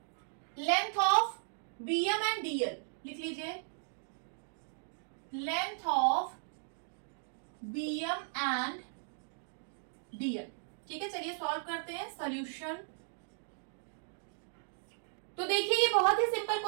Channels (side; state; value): left; silent; digital silence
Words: length of BM and DL, लिख लीजिए, length of BM and DL, ठीक है। चलिए सॉल्व करते हैं। सॉल्यूशन, तो देखिए ये बहुत ही सिंपल